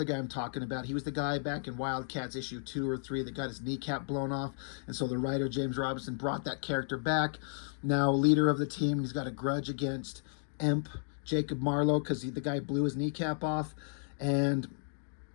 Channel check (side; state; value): right; silent; digital silence